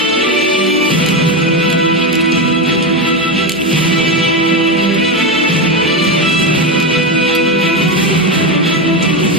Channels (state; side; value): normal; both; correlation 0.13